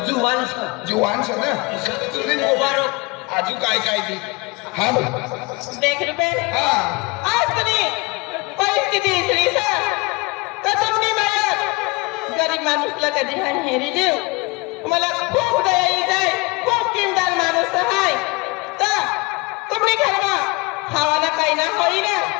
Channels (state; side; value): quieter; right; 26.6 dB